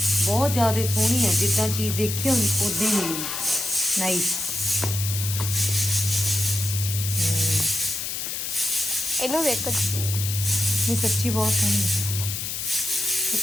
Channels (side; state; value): left; noise; hiss, 4 dB below the sound